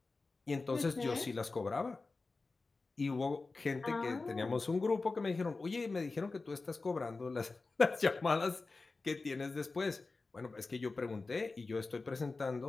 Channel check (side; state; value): right; quieter; 3.8 dB